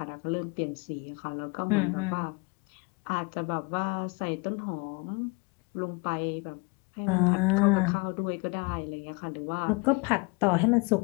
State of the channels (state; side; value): quieter; right; 29.1 dB